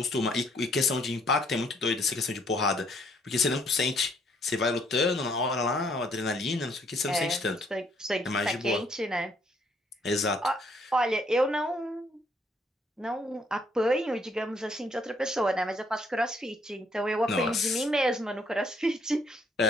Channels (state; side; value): normal; both; correlation 0.67